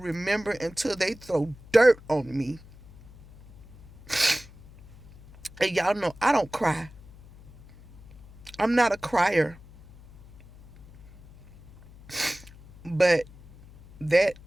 until they throw dirt on me. And y'all know I don't cry. I'm not a crier. But that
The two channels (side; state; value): left; noise; hum, 22 dB below the sound